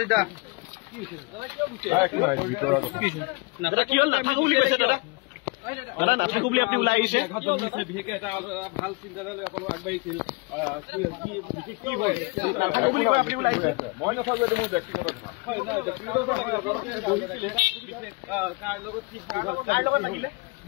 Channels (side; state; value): right; quieter; 27.7 dB